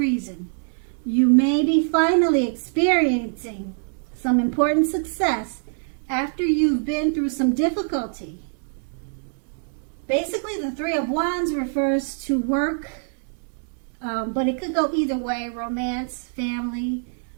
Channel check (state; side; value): silent; left; 63 dB below the other